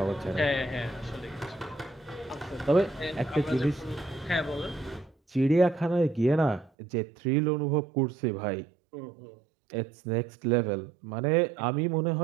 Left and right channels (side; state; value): left; drops out; at 6.7 s